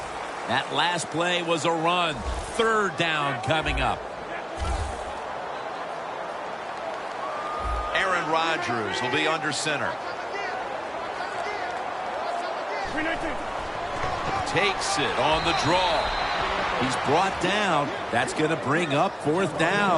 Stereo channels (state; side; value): identical; both; correlation 1.00